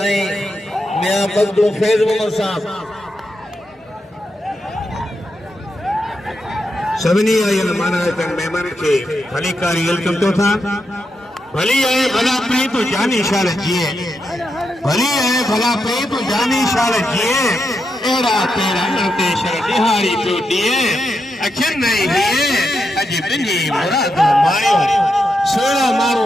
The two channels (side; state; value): both; normal; correlation 0.85